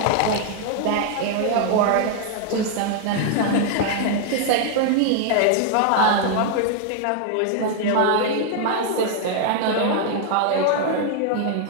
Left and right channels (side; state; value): both; different; correlation 0.00